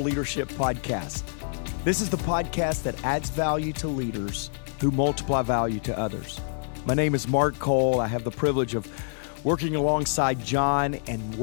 Podcast. This is the podcast that adds value to leaders who multiply value to others. My name is Mark Cole. I have the privilege of working alongside John and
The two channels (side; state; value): right; silent; digital silence